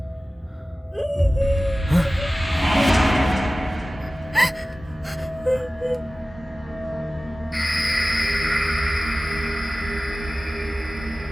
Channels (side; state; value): both; normal; correlation 0.97